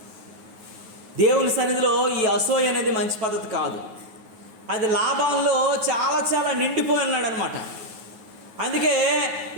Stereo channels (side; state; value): left; late; 9.4 ms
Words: దేవుని సన్నిధిలో ఈ అసూయ అనేది మంచి పద్ధతి కాదు. అది లాభంలో చాలా నిండిపోయి ఉన్నాడు అనమాట. అందుకే